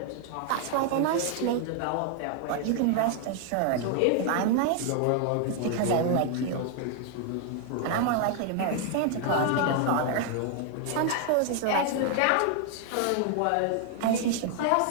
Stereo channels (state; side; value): different; both; correlation 0.00